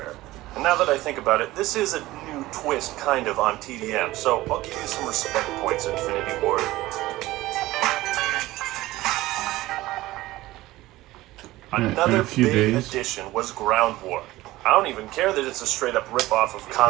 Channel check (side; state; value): left; quieter; 17.6 dB